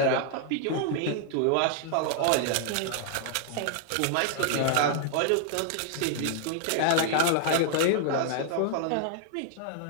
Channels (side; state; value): both; different; correlation 0.00